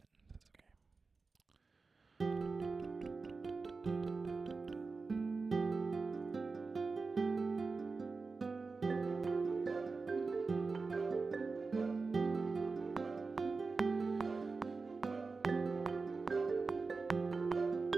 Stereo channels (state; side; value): quieter; left; 4.2 dB